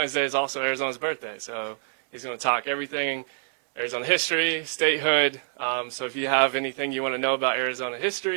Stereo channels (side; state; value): left; silent; 61 dB below the other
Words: Day is also Arizona's birthday, so he's gonna talk everything Arizona history, statehood. So if you have anything you want to know about Arizona